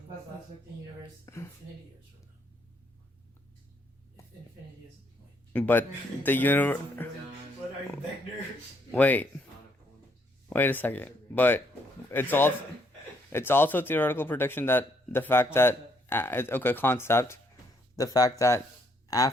like the universe infinity years from now. If infinity is the point. But the universe. What are you, Vector? Wait a second. But it's also theoretical prediction that the fact that concept, the fact that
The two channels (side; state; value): both; normal; correlation 0.70